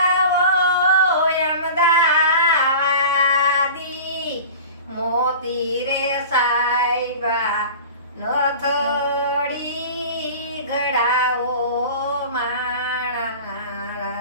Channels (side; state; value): both; inverted; correlation -0.37